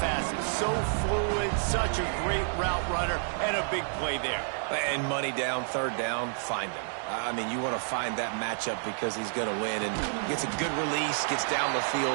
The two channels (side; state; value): left; silent; digital silence